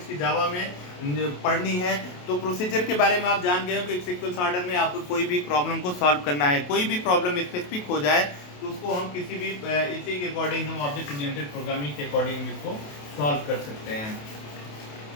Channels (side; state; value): right; late; 28 ms